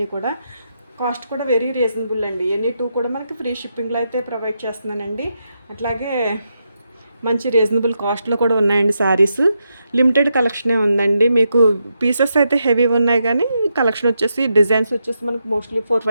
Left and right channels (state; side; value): inverted; both; correlation -0.83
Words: కూడా. కాస్ట్ కూడా వెరీ రీజనబుల్ అండి. ఎనీ 2 కూడా మనకి ఫ్రీ షిప్పింగ్లో అయితే ప్రొవైడ్ చేస్తున్నానండి. అట్లాగే మంచి రీజనబుల్ కాస్ట్లో కూడా ఉన్నాయండి శారీస్. లిమిటెడ్ కలెక్షనే ఉందండి. మీకు పీసెస్ అయితే హెవీ ఉన్నాయి కానీ కలెక్షన్ వచ్చేసి డిజైన్స్ వచ్చేసి మనకు మోస్ట్లీ